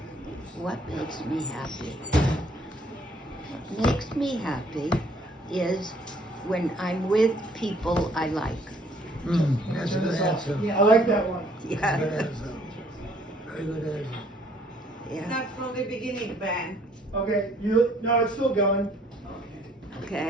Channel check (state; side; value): normal; both; correlation 0.62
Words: What makes me happy? What makes me happy is when I'm with people I like. That's a good answer. I like that one. That's a Yeah. good answer. Very good answer. Yeah. Not from the beginning, Ben. Okay, no, it's still going.